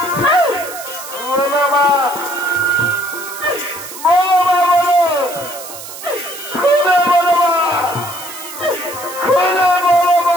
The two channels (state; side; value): noise; right; hiss, 12 dB below the sound